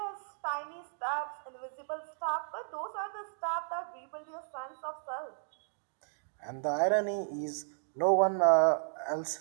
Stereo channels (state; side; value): silent; left; digital silence